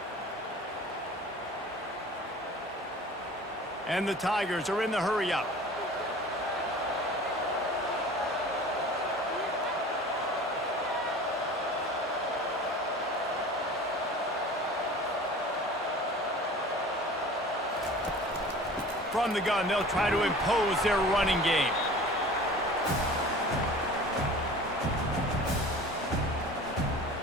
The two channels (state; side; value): normal; both; correlation 0.42